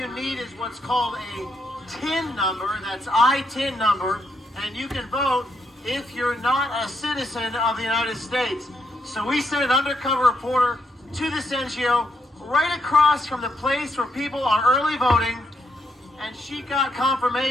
need is what's called a TIN number, that's I-TIN number, and you can vote if you're not a citizen of the United States. So we sent an undercover reporter to this NGO right across from the place where people are early voting, and she got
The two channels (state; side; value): normal; both; correlation 0.79